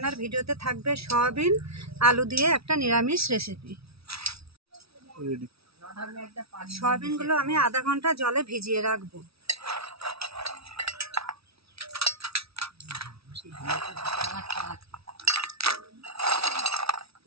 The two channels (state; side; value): late; left; 0.76 ms